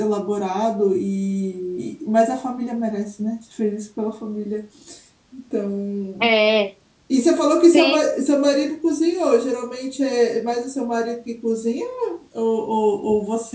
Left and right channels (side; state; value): both; identical; correlation 1.00